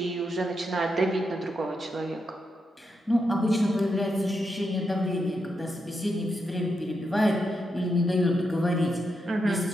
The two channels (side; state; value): both; normal; correlation 0.84